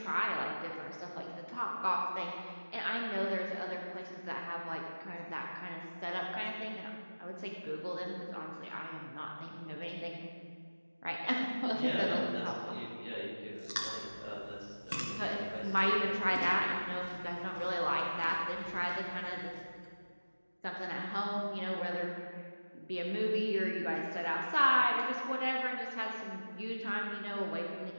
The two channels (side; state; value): both; inverted; correlation -1.00